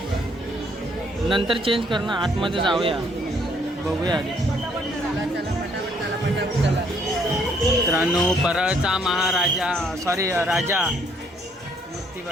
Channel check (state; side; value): normal; both; correlation 0.66